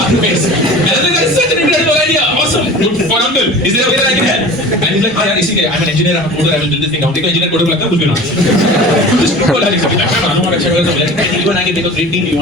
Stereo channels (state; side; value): normal; both; correlation 0.39